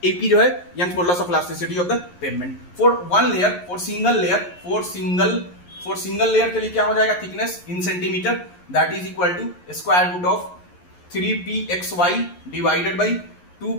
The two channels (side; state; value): right; late; 11 ms